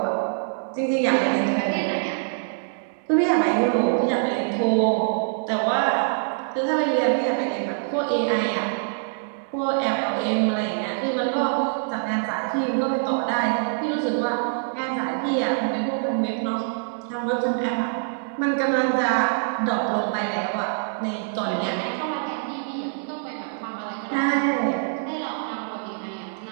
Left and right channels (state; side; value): silent; left; digital silence